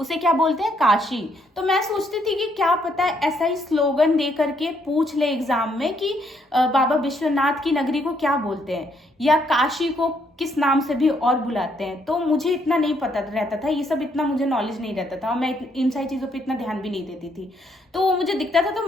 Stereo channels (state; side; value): normal; both; correlation 0.72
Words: क्या बोलते हैं, काशी। तो मैं सोचती थी कि क्या पता है ऐसा ही स्लोगन दे करके पूछ ले एग्जाम में कि बाबा विश्वनाथ की नगरी को क्या बोलते हैं, या काशी को किस नाम से भी और बुलाते हैं। तो मुझे इतना नहीं पता रहता था, ये सब इतना मुझे नॉलेज नहीं रहता था, और मैं इन सारी चीज़ों पे इतना ध्यान भी नहीं देती थी। तो वो मुझे दिखता था तो